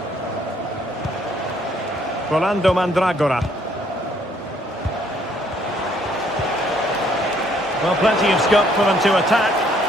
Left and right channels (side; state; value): both; normal; correlation 0.65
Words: Rolando Mandragora. Well, plenty of scope for them to attack.